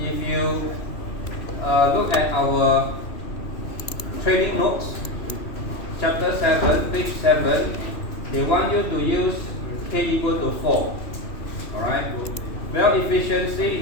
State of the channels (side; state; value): right; late; 2.9 ms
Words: you look at our training notes, chapter 7, page 7, they want you to use K equal to 4. Alright, well